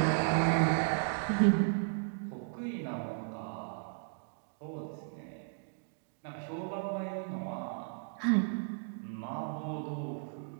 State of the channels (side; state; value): left; silent; digital silence